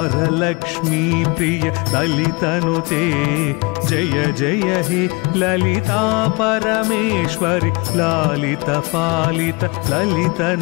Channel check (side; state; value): right; quieter; 27.9 dB